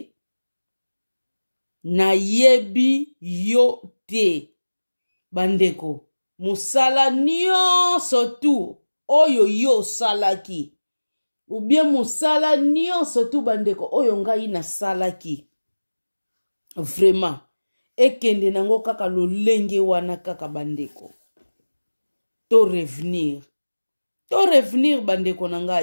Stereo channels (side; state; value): both; inverted; correlation -1.00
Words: na yebi yo te. Bandeko, musala nyonso tu oyo yo salaki. Ou bien musala nyonso tu bandeko oyo ngai na salaki. Vraiment. Ekende nango kaka lolenge wana kaka bandeko. To revenir bandeko na